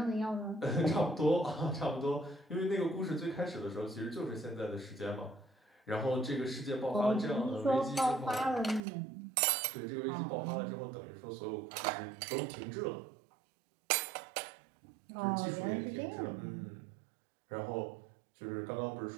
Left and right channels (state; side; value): drops out; left; at 8.8 s